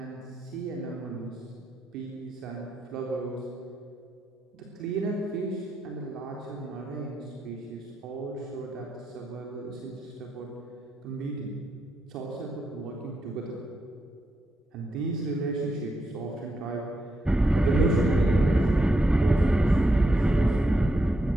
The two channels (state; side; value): normal; both; correlation 0.83